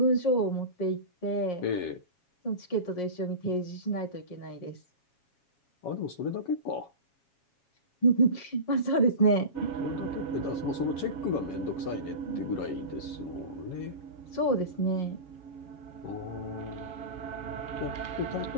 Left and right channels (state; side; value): late; right; 7.3 ms